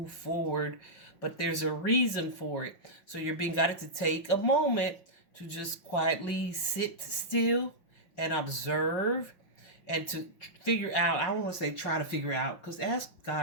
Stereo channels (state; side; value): late; right; 5.5 ms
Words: forward, but there's a reason for it. So you're being guided to take a moment to just quietly sit still and observe and to figure out. I don't want to say try to figure out, because ask